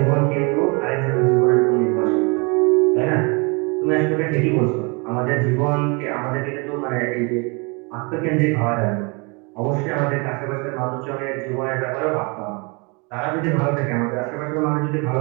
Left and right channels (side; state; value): left; quieter; 30.8 dB